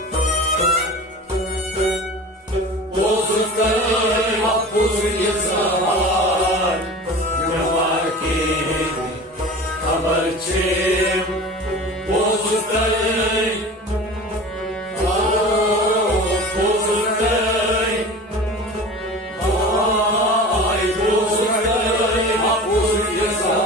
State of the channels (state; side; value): normal; both; correlation 0.36